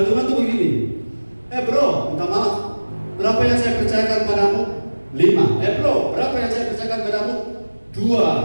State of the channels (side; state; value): both; inverted; correlation -1.00